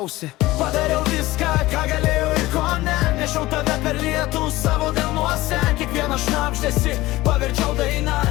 Padariau viską, ką galėjau ir ko ne, nešiau tave per lietų savo delnuose. Kiekvieną šnabždesį paverčiau dainą,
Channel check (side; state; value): right; quieter; 18.2 dB